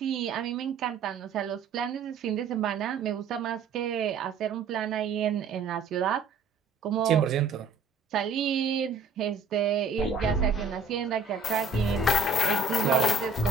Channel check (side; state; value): left; quieter; 4.2 dB